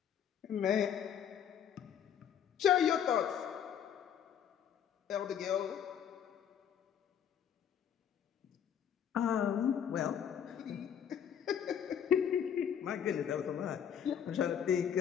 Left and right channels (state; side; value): quieter; right; 8.7 dB